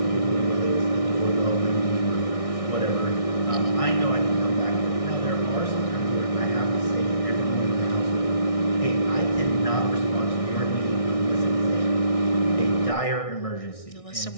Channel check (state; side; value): late; right; 1.6 ms